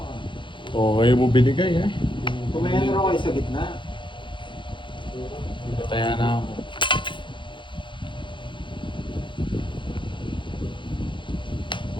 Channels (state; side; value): late; right; 0.23 ms